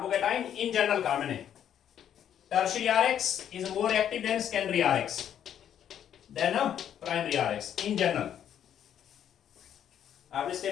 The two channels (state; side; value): quieter; right; 9.7 dB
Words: in general carbon है। Tertiary RX is more active than secondary RX than a primary RX in general। आपने